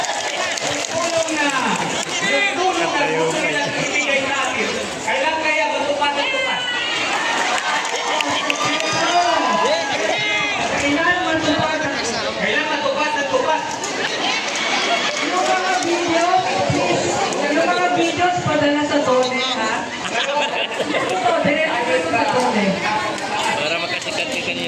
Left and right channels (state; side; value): identical; both; correlation 1.00